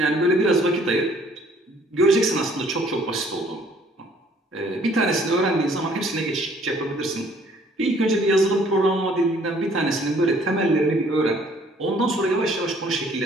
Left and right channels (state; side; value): normal; both; correlation 0.60